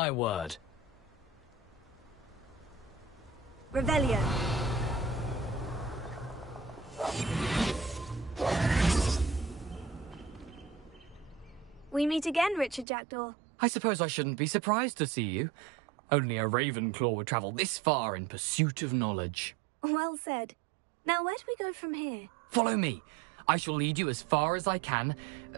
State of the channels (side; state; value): left; drops out; at 12.9 s